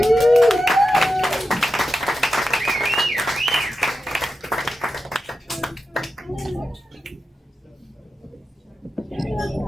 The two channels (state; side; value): normal; both; correlation 0.90